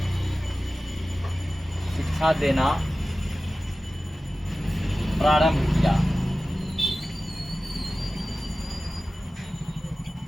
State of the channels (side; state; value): both; normal; correlation 0.95